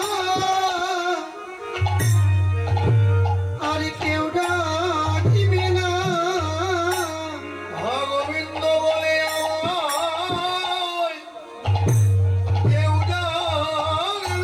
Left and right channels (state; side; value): identical; both; correlation 1.00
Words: আর কেউ ডাকিবে না। গোবিন্দ বলে কেউ